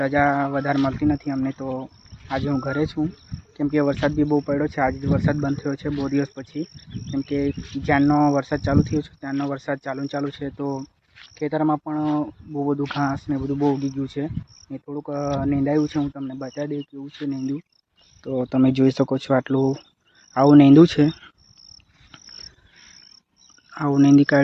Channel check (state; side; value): identical; both; correlation 1.00